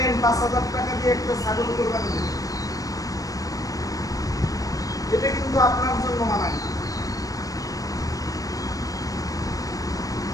৫,০০০ টাকা দিয়ে একটা ছাগল কুরবানি দিলেন, এটা কিন্তু আপনার জন্য মানায় না।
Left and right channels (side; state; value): right; late; 0.17 ms